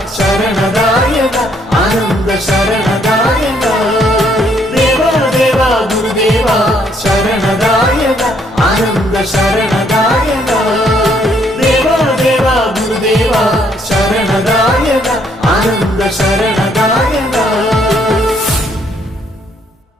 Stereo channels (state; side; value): normal; both; correlation 0.68